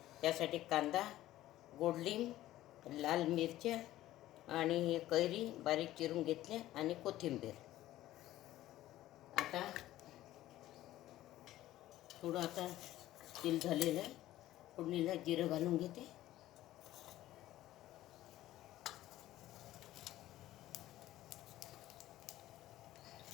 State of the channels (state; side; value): quieter; right; 14.8 dB